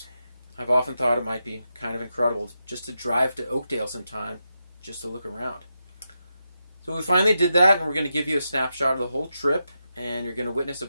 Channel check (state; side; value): inverted; both; correlation -0.87